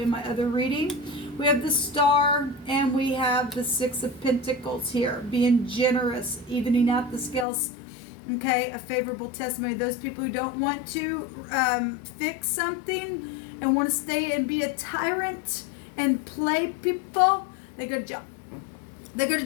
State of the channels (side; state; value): right; drops out; at 7.5 s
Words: my other reading. We have the Star, and we have the Six of Pentacles here, being generous, evening out the scales. Okay, a favorable testimony. Those people who don't want to fix something and want to stay and be a tyrant and play people, they go to jail. They go to